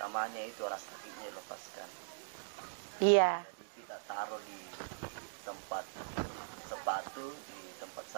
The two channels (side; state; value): left; silent; digital silence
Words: itu rasa sakitnya dilepaskan. Iya. Jadi kita taruh di tempat sepatu, di tempat